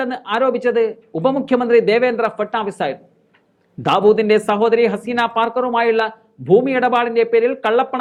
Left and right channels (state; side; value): identical; both; correlation 1.00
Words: ആരോപിച്ചത് ഉപമുഖ്യമന്ത്രി ദേവേന്ദ്ര ഫട്നാവിസ് ആയിരുന്നു. ദാവൂദിന്റെ സഹോദരി ഹസീന പാർക്കറുമായുള്ള ഭൂമി ഇടപാടിന്റെ പേരിൽ